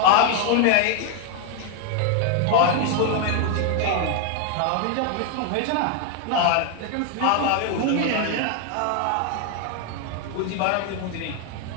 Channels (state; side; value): different; both; correlation 0.01